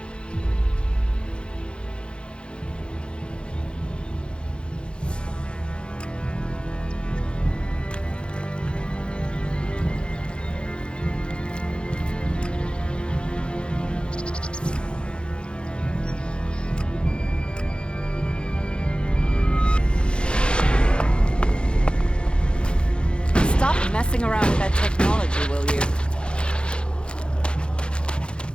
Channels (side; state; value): right; late; 0.054 ms